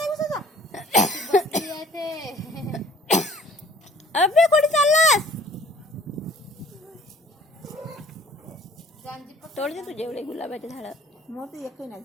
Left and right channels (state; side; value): normal; both; correlation 0.52